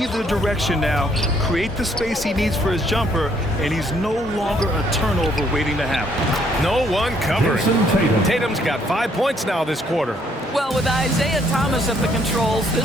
direction now, create the space he needs for his jumper, and he's no longer a turnover waiting to happen. No one covering. Tatum's got 5 points now this quarter. Well, with Isaiah Thomas at the controls,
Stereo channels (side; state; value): both; normal; correlation 0.68